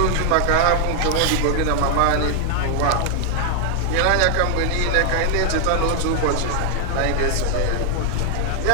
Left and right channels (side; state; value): both; different; correlation 0.00